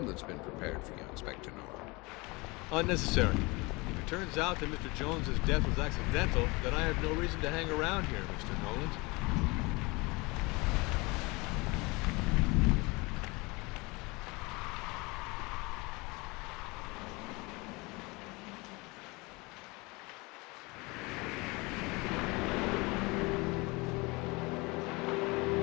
that's been prepared for you, Inspector Norm. Unnecessary. If it turns out that Mr. Jones's death was accidental, then I have no reason to hang around here, Mr. Nolan.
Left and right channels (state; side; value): quieter; right; 25.3 dB